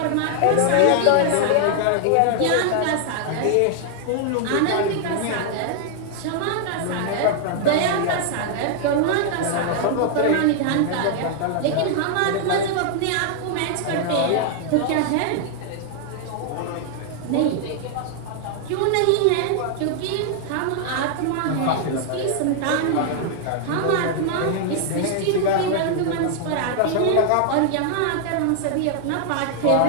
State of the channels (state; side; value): different; both; correlation 0.00